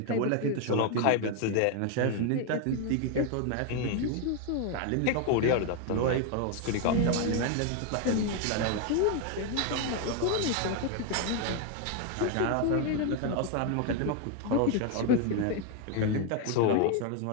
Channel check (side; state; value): both; different; correlation 0.01